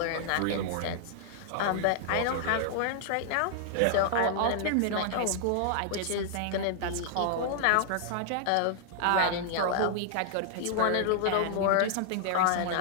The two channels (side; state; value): both; different; correlation -0.01